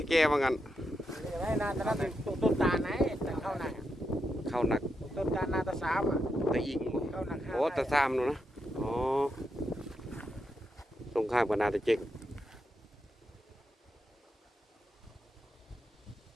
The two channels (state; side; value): normal; both; correlation 0.84